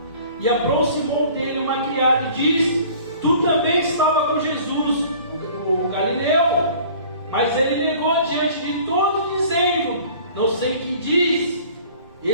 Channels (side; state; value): both; inverted; correlation -0.48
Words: e aproximou dele uma criada e disse: tu também estava com Jesus, o Galileu. Mas ele negou diante de todos, dizendo: não sei o que diz.